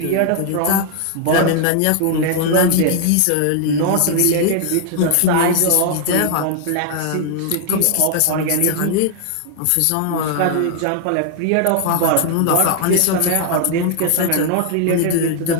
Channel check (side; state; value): both; different; correlation 0.00